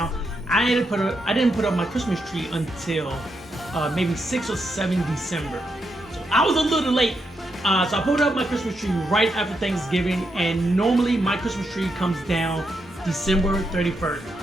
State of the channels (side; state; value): both; normal; correlation 0.82